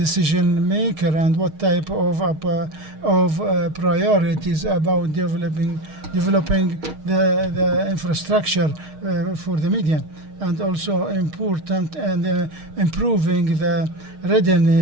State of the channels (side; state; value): left; late; 6.4 ms